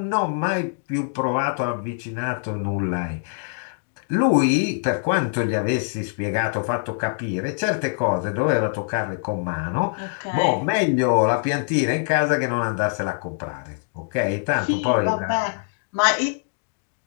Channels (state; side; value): silent; right; digital silence